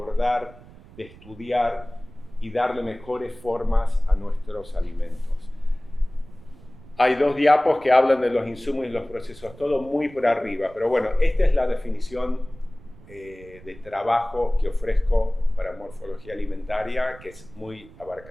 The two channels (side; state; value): right; noise; rumble, 21 dB below the sound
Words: de estudiar y darle mejores formas a nuestros alimentos? Hay 2 diapos que hablan de los insumos y los procesos, todo muy por arriba, pero bueno, esta es la definición de trabajo que ofrezco para morfología alimentaria, que es muy